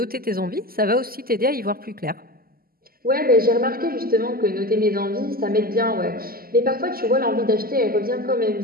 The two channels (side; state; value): left; late; 0.43 ms